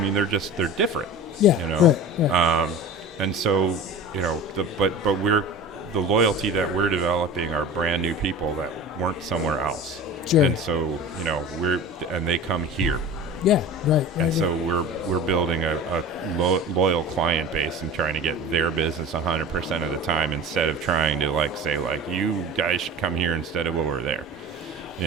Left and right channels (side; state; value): both; normal; correlation 0.35